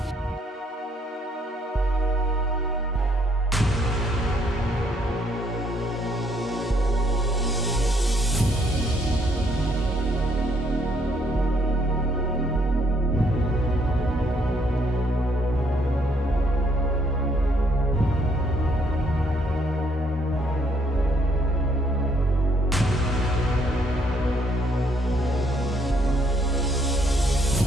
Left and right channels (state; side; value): normal; both; correlation 0.69